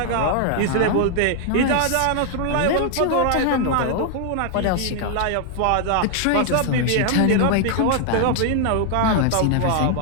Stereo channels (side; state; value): both; different; correlation 0.00